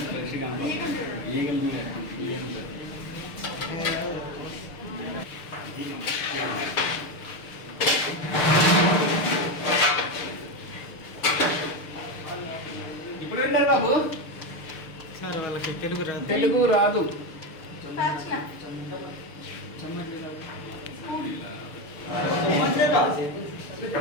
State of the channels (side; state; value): right; late; 6.7 ms